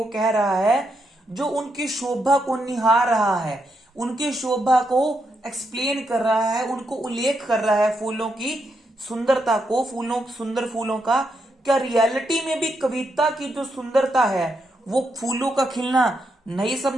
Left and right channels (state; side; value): normal; both; correlation 0.81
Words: कह रहा है, जो उनकी शोभा को निहार रहा है, उनकी शोभा को एक्सप्लेन कर रहा है, उनको उल्लेख कर रहा है फूलों की सुंदरता को, सुंदर फूलों का। क्या रियलिटी में भी कविता की जो सुंदरता है वो फूलों का खिलना नहीं